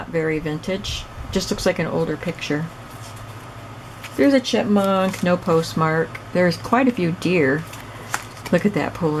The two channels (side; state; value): both; identical; correlation 1.00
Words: very vintage. Just looks like an older picture. There's a chipmunk, no postmark. There's quite a few deer. Look at that